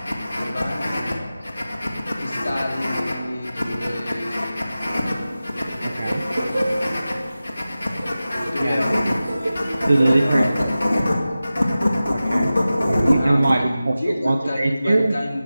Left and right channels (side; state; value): both; inverted; correlation -0.95